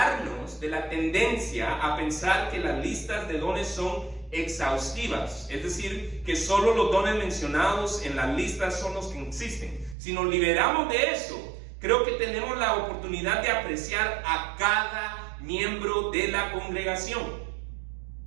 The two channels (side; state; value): left; drops out; at 10.0 s